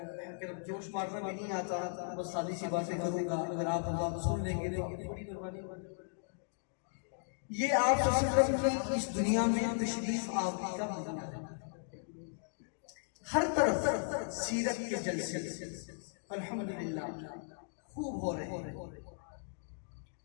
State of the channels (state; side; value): silent; right; digital silence